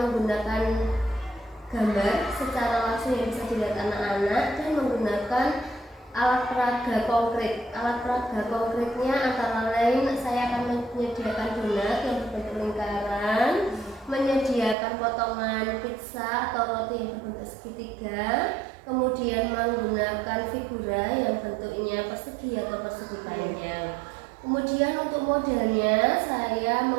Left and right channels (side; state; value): left; drops out; at 14.8 s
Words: gambar secara langsung yang bisa dilihat anak-anak dan menggunakan alat peraga konkret. Alat peraga konkretnya antara lain saya akan menyediakan donat yang berbentuk lingkaran, menyediakan potongan pizza atau roti yang berbentuk segitiga, kemudian menggunakan figura yang bentuknya persegi atau persegi panjang. Kemudian untuk modelnya saya